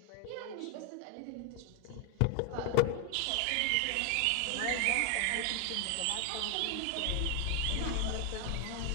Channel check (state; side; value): different; both; correlation 0.00